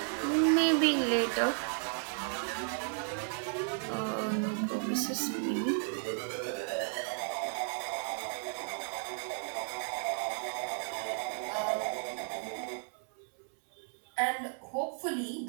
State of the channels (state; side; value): silent; left; 55 dB below the other